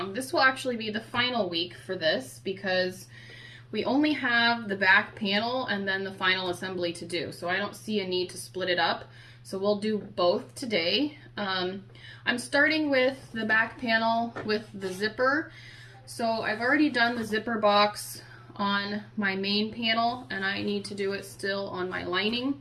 This will actually be the final week for this because we only have the back panel and then the final assembly to do. So I don't see a need to split it up. So we'll do both today. I'm starting with the back panel with the zipper. So I've already done the zipper box on my main panel and I need to do it still on my lining.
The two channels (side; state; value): both; identical; correlation 1.00